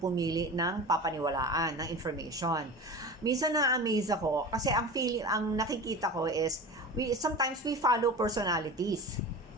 ng papaniwalaan, ng information. Minsan na-amaze ako kasi ang nakikita ko is sometimes we follow personalities.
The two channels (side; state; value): both; normal; correlation 0.32